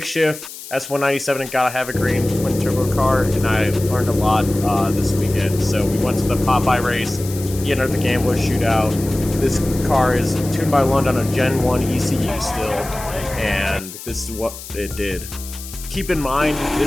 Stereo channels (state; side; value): noise; left; hiss, 13 dB below the sound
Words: shift S197 and gotta have a green twin turbo car, and I learned a lot this weekend. So we went to the Popeye race. He entered the Gambler shootout. This car is tuned by London on a Gen 1 ECU still, and this is what it did. Keep in mind,